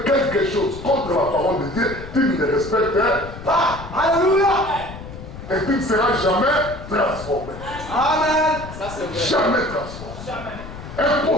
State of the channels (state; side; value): noise; left; rumble, 12 dB below the sound